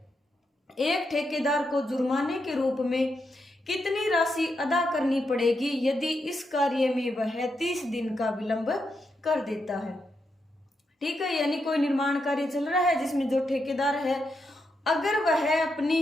एक ठेकेदार को जुर्माने के रूप में कितनी राशि अदा करनी पड़ेगी यदि इस कार्य में वह 30 दिन का विलंब कर देता है? ठीक है, यानी कोई निर्माण कार्य चल रहा है जिसमें जो ठेकेदार है, अगर वह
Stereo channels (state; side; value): normal; both; correlation 0.83